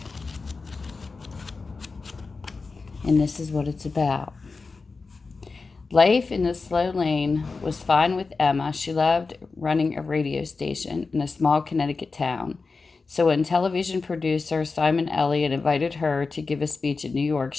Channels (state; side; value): quieter; right; 4.2 dB